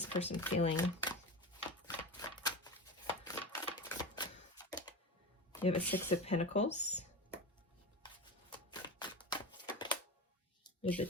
person feeling? You have a Six of Pentacles. You have the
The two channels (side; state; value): both; normal; correlation 0.26